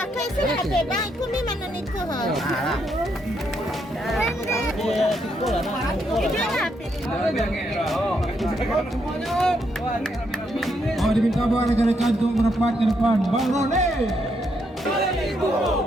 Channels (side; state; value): both; normal; correlation 0.77